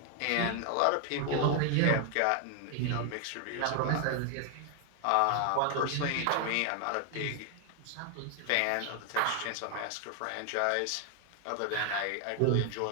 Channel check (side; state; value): both; different; correlation 0.00